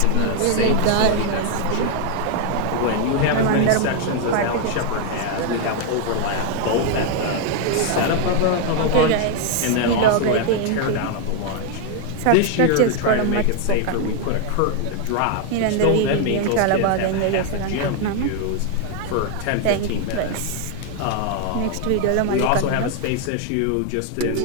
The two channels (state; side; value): different; both; correlation 0.00